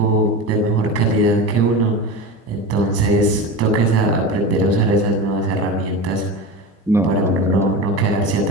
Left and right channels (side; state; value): both; normal; correlation 0.26